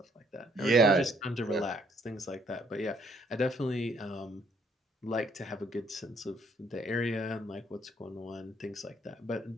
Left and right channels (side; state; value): both; normal; correlation 0.66